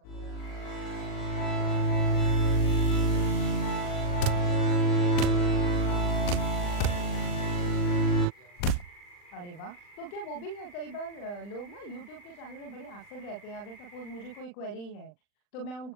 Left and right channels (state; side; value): late; right; 39 ms